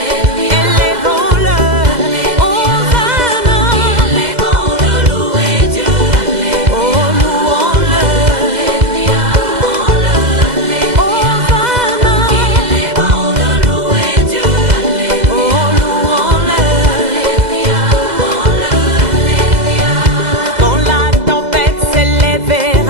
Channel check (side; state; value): left; late; 2.0 ms